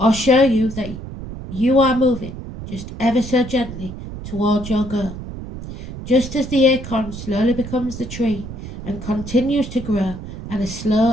show you that you are moving just ever so gently towards your goal. Just as the acorn slowly becomes the tree and continues to grow at a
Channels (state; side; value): noise; right; rumble, 10 dB below the sound